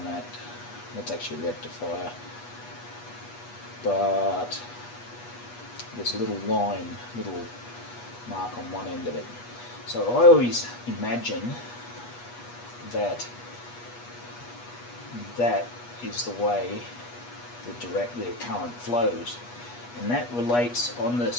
that. That's actually a rectifier. But there's a little line, little mark on one end of it. So I always imagine that that is the way the current flows, and that relates on the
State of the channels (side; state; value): right; late; 8.3 ms